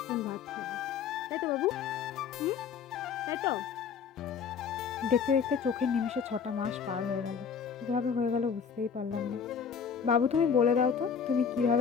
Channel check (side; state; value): right; quieter; 6.7 dB